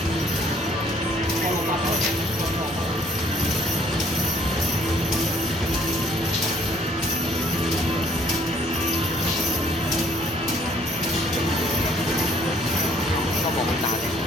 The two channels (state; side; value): normal; both; correlation 0.61